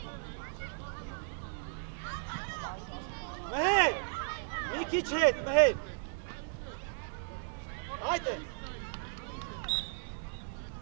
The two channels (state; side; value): silent; left; digital silence